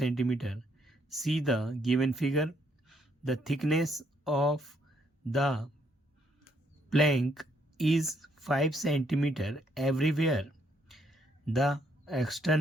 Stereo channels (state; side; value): normal; both; correlation 0.71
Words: See the given figure. The thickness of the plank is 5 cm everywhere. The